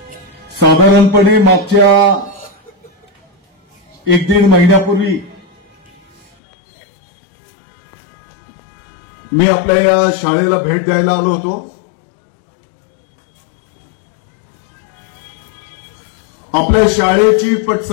साधारणपणे मागच्या 1-1.5 महिन्यापूर्वी मी आपल्या या शाळेला भेट द्यायला आलो होतो. आपल्या शाळेची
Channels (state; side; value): drops out; right; at 6.3 s